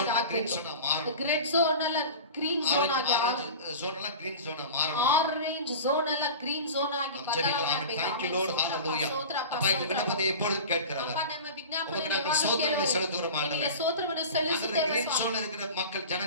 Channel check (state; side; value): inverted; both; correlation -0.34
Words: green ಆಗಬೇಕು. zone-ஆ மாறணும். ರೆಡ್ ಝೋನ್ ಅಲ್ಲ ಗ್ರೀನ್ ಝೋನ್ ಆಗಿ, Orange zone-எல்லாம் green zone-ஆ மாறணும். ಆರೆಂಜ್ ಝೋನ್ ಅಲ್ಲ ಗ್ರೀನ್ ಝೋನ್ ಆಗಿ ಬದಲಾವಣೆ ಆಗಬೇಕು. Thank you, Lord. Hallelujah. அப்பா, இந்த விண்ணப்பத்தை எப்பொழுதும் கேட்கிறவர். ಅಪ್ಪ, ನಮ್ಮ ವಿಜ್ಞಾಪನೆ உங்களுக்கு நாங்கள் சோத்திரத்தை செலுத்துகிறோம் ஆண்டவரே. ನಿಮಗೆ ಸ್ತೋತ್ರವನ್ನು அந்த ಸಲ್ಲಿಸುತ್ತೇವೆ green ಸ್ವಾಮಿ. zone இருக்கிற மக்கள்